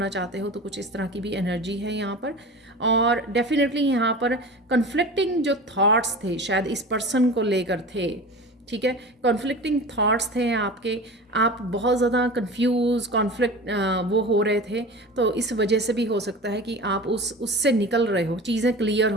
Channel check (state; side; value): normal; both; correlation 0.34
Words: चाहते हो, तो कुछ इस तरह की भी एनर्जी है यहाँ पर। और डेफिनेटली यहाँ पर कन्फ्लिक्टिंग जो थॉट्स थे शायद इस पर्सन को लेकर थे, ठीक है, कॉन्फ्लिक्टिंग थॉट्स थे आपके, आप बहुत ज़्यादा कंफ्यूज कॉन्फ्लिक्ट वो हो रहे थे, तो इस वजह से भी हो सकता है कि आप उससे निकल रहे हो, चीज़ें क्लियर